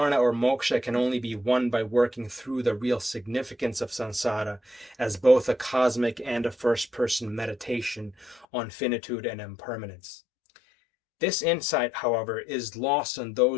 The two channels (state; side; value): drops out; right; at 8.5 s